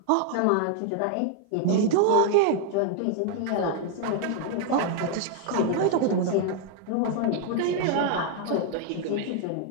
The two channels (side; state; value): both; different; correlation 0.00